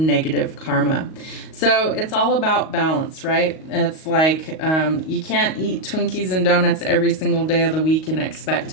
negative karma. So it's all about balance, right? It's like you can't eat Twinkies and donuts every single day of the week and expect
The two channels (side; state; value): right; late; 38 ms